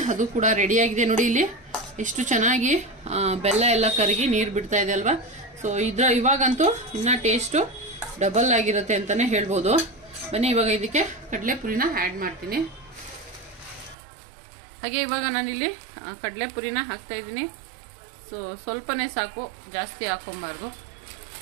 ಅದು ಕೂಡ ರೆಡಿಯಾಗಿದೆ. ನೋಡಿ ಇಲ್ಲಿ ಎಷ್ಟು ಚೆನ್ನಾಗಿ ಬೆಲ್ಲ ಎಲ್ಲ ಕರಗಿ ನೀರು ಬಿಡ್ತಾ ಇದೆ ಅಲ್ವಾ. ಸೊ ಇವಾಗಂತೂ ಇನ್ನ ಟೇಸ್ಟು ಡಬಲ್ ಆಗಿರುತ್ತೆ ಅಂತಾನೆ ಹೇಳ್ಬೋದು. ಬನ್ನಿ ಇವಾಗ ಇದಕ್ಕೆ ಕಡಲೆಪುರಿನ ಆ್ಯಡ್ ಮಾಡ್ತೀನಿ. ಹಾಗೆ ಇವಾಗ ನಾನಿಲ್ಲಿ ಕಡಲೆಪುರಿನ ಹಾಕ್ತಾ ಇದ್ದೀನಿ. ಸೊ ಸ್ವಲ್ಪನೇ ಸಾಕು, ಜಾಸ್ತಿ ಹಾಕೊಂಬಾರ್ದು.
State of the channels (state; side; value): drops out; left; at 14.0 s